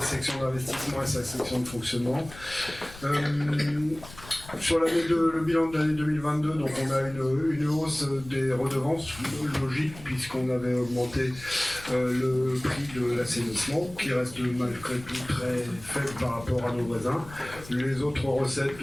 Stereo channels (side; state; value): left; noise; rumble, 17 dB below the sound